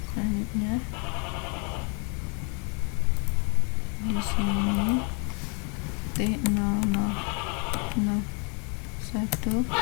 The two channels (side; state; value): right; quieter; 36.3 dB